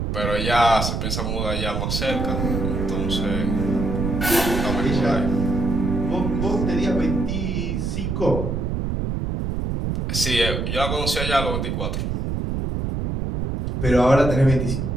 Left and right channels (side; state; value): right; noise; rumble, 1 dB below the sound